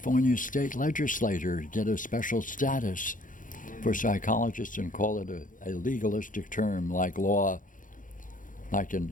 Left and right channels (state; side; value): late; right; 0.38 ms